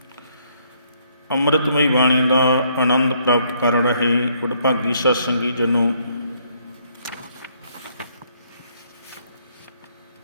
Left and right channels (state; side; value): inverted; both; correlation -0.68